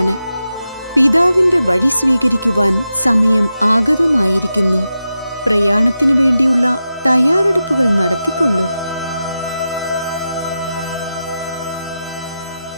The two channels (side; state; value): both; inverted; correlation -0.90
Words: പിതാവിന്റെ വഴി സ്വീകരിക്കുവാൻ സമയം ആഗതമായിരിക്കുന്നു. പ്രയാണത്തിനു വേണ്ടിയുള്ള തയ്യാറെടുപ്പുകൾ നടത്തിക്കൊള്ളൂ.